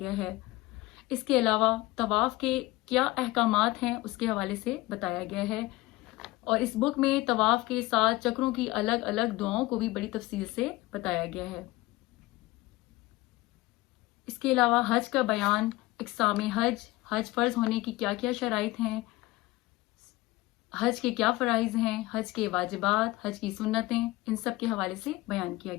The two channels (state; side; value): quieter; right; 19.6 dB